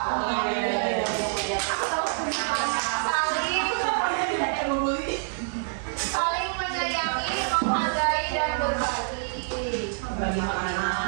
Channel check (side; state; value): left; silent; 60 dB below the other